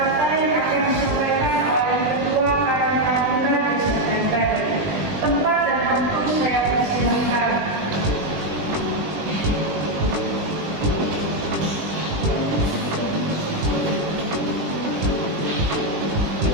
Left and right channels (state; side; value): late; left; 20 ms